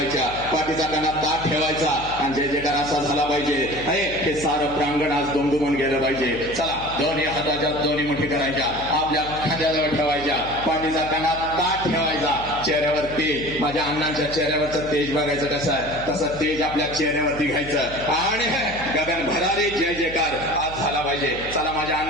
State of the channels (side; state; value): right; noise; hum, 14 dB below the sound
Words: पाठीचा कानात ताट ठेवायचा आणि जय जयकार असा झाला पाहिजे. हे सारं प्रांगण आज दुमदुमून गेलं पाहिजे. चला, दोन्ही हाताच्या दोन्ही मुठी करायच्या, आपल्या खांद्याजवळ ठेवायच्या, पाठीचा कानात ताट ठेवायचा, चेहऱ्यावर तेज, माझ्या अण्णांच्या चेहऱ्यावरचं तेज बघायचं कसं आहे, तसं तेज आपल्या चेहऱ्यावरती घ्यायचं आणि गगन भरारी जय जयकार आज झाला पाहिजे. चला, माझ्या